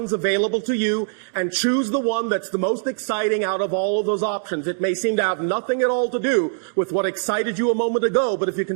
available to you and choose the one that's the most exciting out of all of those options. It may seem to have nothing at all to do with what excited you a moment ago, but if you can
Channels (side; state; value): left; silent; digital silence